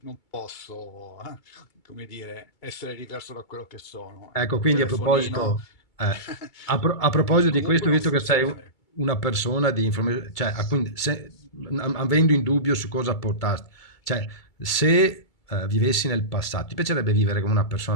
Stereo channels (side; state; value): right; late; 2.3 ms